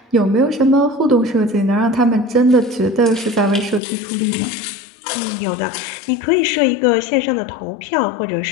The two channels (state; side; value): drops out; right; at 3.8 s